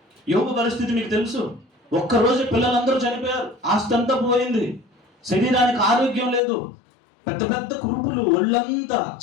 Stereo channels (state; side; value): drops out; right; at 6.4 s